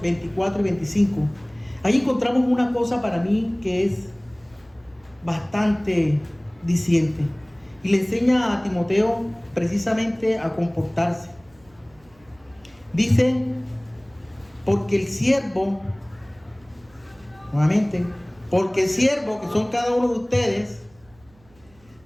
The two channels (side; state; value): right; noise; hum, 30 dB below the sound